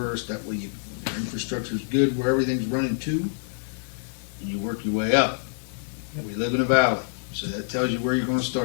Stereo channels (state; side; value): silent; right; digital silence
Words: That way, your infrastructure's good where everything's running to, and you work your way up. We live in a valley, so that tells you where you're going to